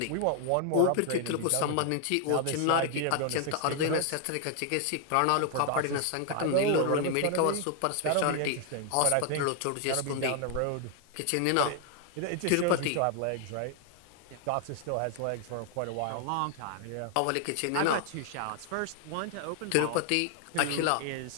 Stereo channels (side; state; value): both; different; correlation 0.00